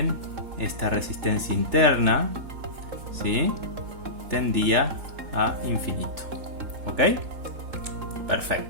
esta resistencia interna, ¿sí?, tendía a infinito. ¿Ok?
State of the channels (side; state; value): left; late; 3.7 ms